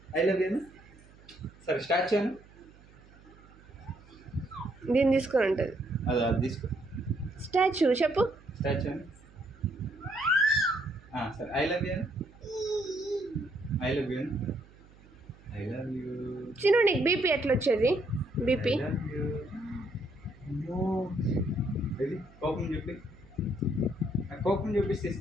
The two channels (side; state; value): right; noise; hum, 24 dB below the sound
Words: లవ్ యూ సరే స్టార్ట్ చేయను దీన్ని తీసుకొని ఉంటుంది అది తీసుకో స్టాచ్యూ చెప్పు స్టాచ్యూ సరే I love you I love you I love you చిన్న నీకు బీపీ ఎట్లా వచ్చేది బీపీ ఇది కోపం చెప్పి కోపం చూపిస్తే